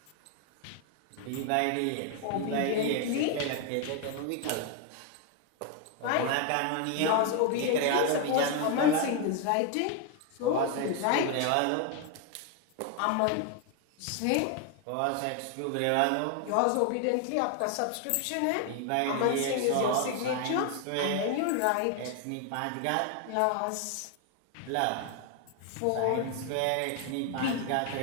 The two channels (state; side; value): different; both; correlation 0.01